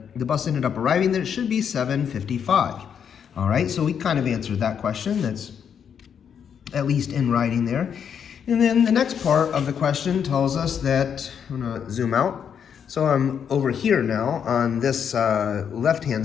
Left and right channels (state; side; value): quieter; right; 7.8 dB